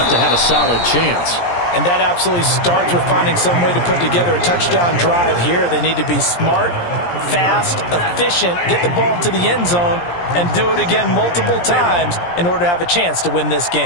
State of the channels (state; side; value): late; right; 17 ms